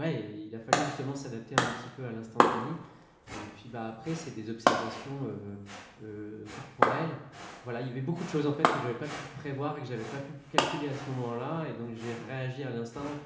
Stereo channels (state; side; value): identical; both; correlation 1.00